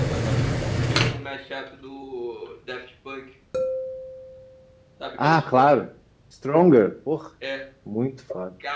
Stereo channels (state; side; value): identical; both; correlation 1.00